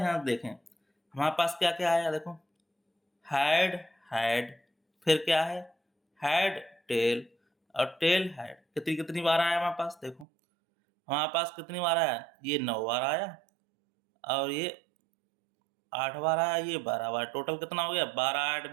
देखें हमारे पास क्या क्या आया। देखो हेड हेड, फिर क्या है हेड टेल और टेल हेड कितनी कितनी बार आया हमारे पास। देखो हमारे पास कितनी बार आया, ये 9 बार आया और ये 8 बार आया, ये 12 बार। टोटल कितना हो गया 12, 8,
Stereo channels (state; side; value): drops out; left; at 10.2 s